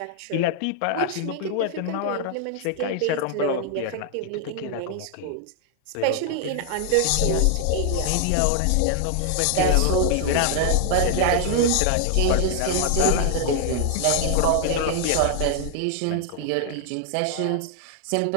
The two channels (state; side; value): different; both; correlation 0.00